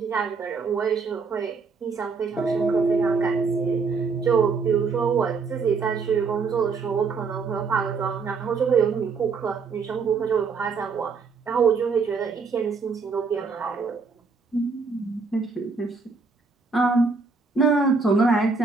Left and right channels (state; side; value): quieter; left; 4.8 dB